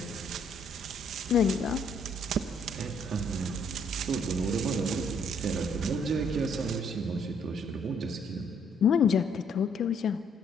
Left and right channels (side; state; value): both; normal; correlation 0.67